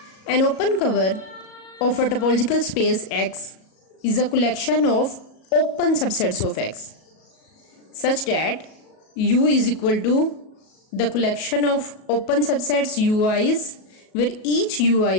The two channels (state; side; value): late; right; 37 ms